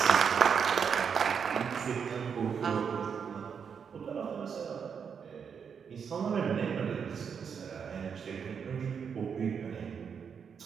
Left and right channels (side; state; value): left; quieter; 6.8 dB